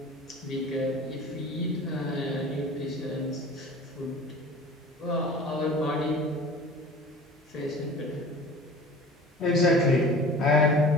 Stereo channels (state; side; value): normal; both; correlation 0.42